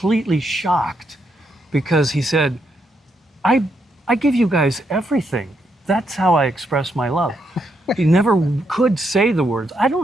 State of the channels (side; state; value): both; normal; correlation 0.78